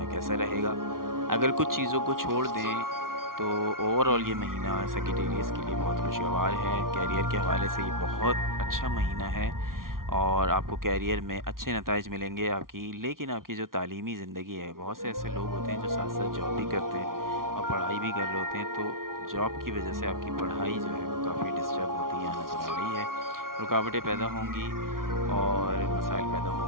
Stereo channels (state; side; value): late; left; 0.92 ms